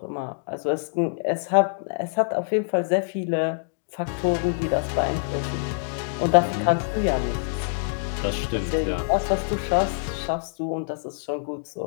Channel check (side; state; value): right; silent; digital silence